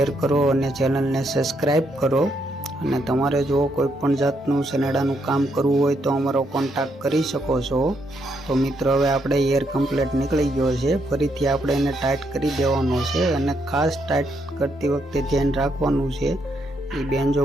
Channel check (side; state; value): both; normal; correlation 0.76